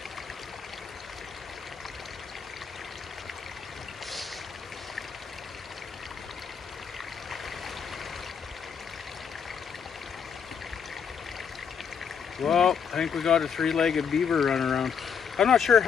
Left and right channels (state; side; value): quieter; right; 6.9 dB